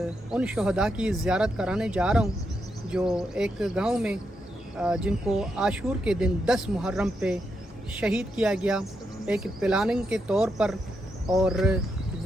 ان شہداء کی زیارت کرانے جا رہا ہوں جو ایک گاؤں میں جن کو عاشور کے دن 10 محرم پہ شہید کیا گیا ایک پلاننگ کے طور پر، اور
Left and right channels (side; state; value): both; normal; correlation 0.82